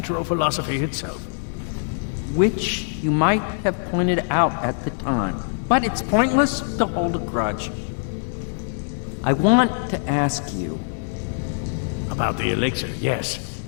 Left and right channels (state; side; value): silent; right; digital silence